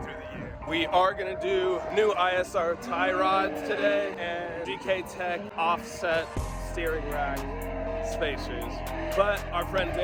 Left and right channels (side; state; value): both; identical; correlation 1.00